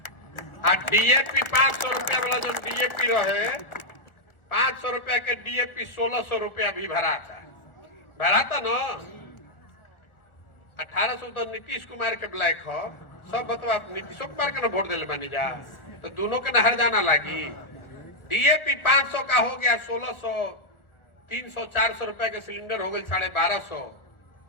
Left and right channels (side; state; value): right; late; 1.5 ms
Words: आ डीएपी 500 रुपया वाला जो डीएपी रहे, 500 रुपया के डीएपी 1600 रुपया भी भरा था ना। 1800 तो नीतीश कुमार के ब्लैक हो, सब बतवा नीतीश कुमार के ना वोट दिले बनी जा, तो दोनों के नहर जाना लगी। डीएपी 500 का हो गया 1600, 300 400 रुपया के सिलेंडर हो गए 1250।